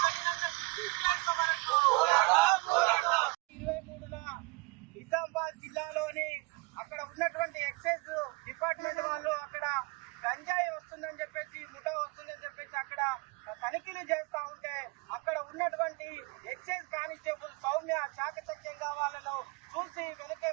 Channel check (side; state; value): left; quieter; 27.2 dB